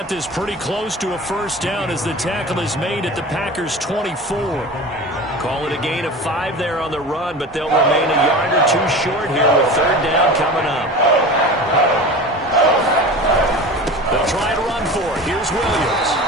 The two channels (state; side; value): normal; both; correlation 0.33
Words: this pretty close to a first down as the tackle is made at the Packers' 24. Call it a gain of 5 there on the run, but they'll remain a yard or two short here with third down coming up. They'll try to run for it. Here's Williams.